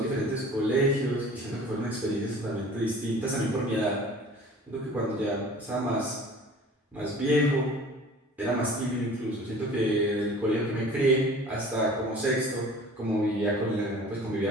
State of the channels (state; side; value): normal; both; correlation 0.46